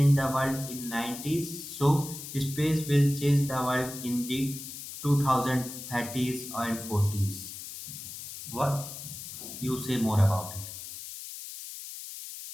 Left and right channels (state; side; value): noise; left; hiss, 10 dB below the sound